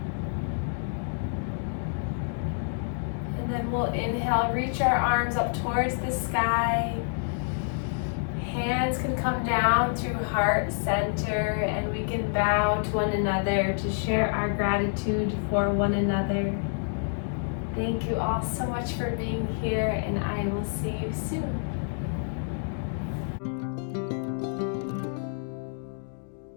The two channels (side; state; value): right; silent; digital silence